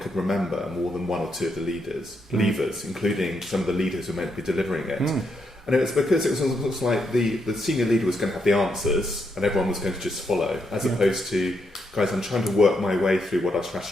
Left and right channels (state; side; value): normal; both; correlation 0.79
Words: remember more than 1 or 2 of the levers, including some of the leaders who were meant to be delivering it. And it was because it was almost like the senior leader was going to have the answers and everyone was going to just follow, as opposed to, guys, I'm trying to work my way through what our